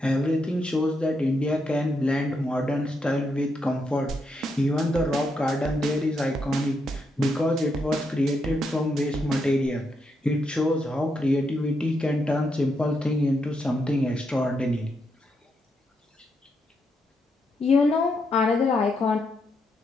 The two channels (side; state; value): both; normal; correlation 0.81